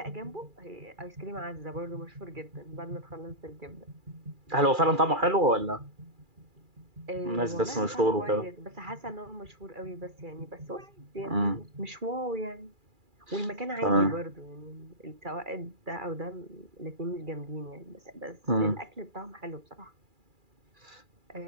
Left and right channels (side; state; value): left; late; 2.4 ms